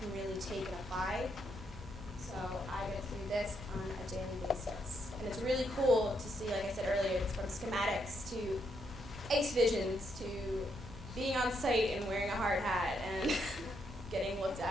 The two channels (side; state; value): right; noise; hum, 17 dB below the sound